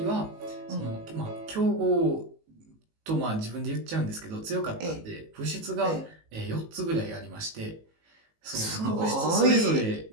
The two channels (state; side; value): late; left; 18 ms